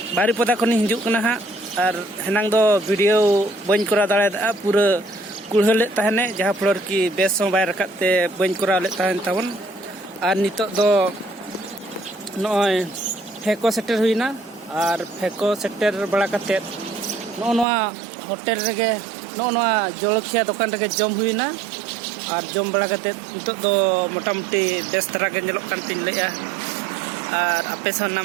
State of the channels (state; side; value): drops out; left; at 17.7 s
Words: बारीपदा खनि हिजुक कना हा और हेनांग दो वीडियो बन करा दाड़ा पूरा कुड़हले तहने जहाँ फ्लोर की बेस बाय रकाते बन करा ले तहन तबन और नितोग दो नय फेको सेटर हुइना और फेको सेटर बड़ा कते नोआ होटल रेगे नोआ जलखिया दुकान रेगे जम हुइना और जम बड़ा करते नितोग दो मोटामुटी बेस तरह के नेलोग कान तिन लेया और आपे सा